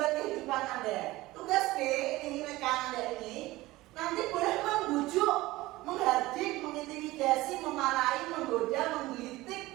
kehidupan Anda. Tugas B, ini rekan Anda ini, nanti boleh membujuk, menghardik, mengintimidasi, memarahi, menggoda,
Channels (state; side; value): quieter; left; 18.7 dB